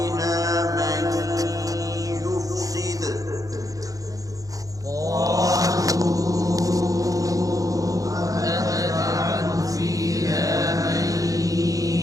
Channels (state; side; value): late; left; 0.17 ms